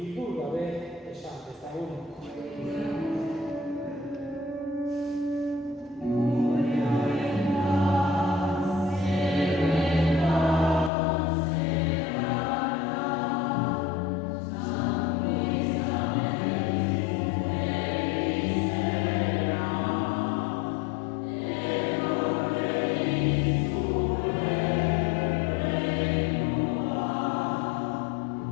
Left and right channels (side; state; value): right; drops out; at 10.9 s